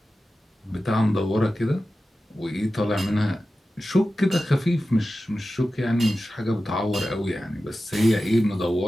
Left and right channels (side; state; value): both; normal; correlation 0.94